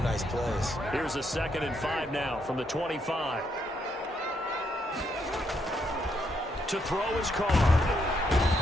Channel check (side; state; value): both; normal; correlation 0.76